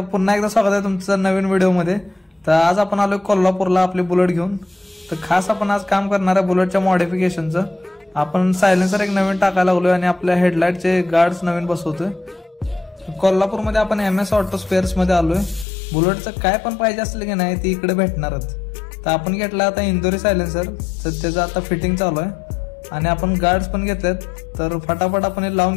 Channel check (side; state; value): right; drops out; at 15.7 s